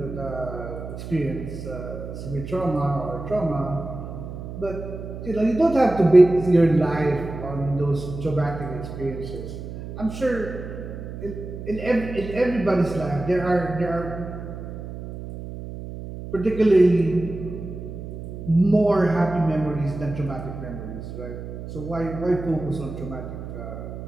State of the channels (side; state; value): right; noise; hum, 9 dB below the sound